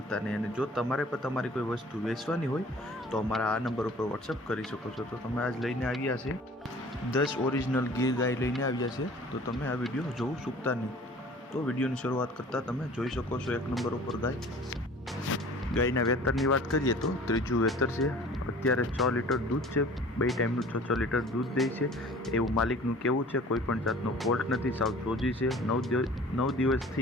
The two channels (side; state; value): both; normal; correlation 0.47